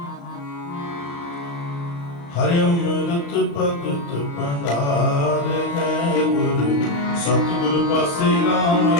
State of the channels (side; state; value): right; late; 35 ms